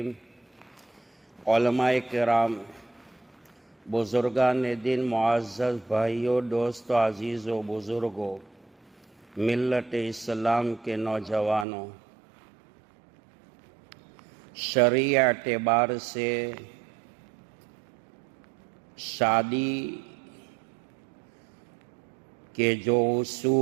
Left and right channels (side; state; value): left; drops out; at 11.7 s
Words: علماء کرام بزرگان دین معزز بھائیوں دوستوں عزیز و بزرگوں ملت اسلام کے نوجوانوں، شرعی اعتبار سے شادی کے جو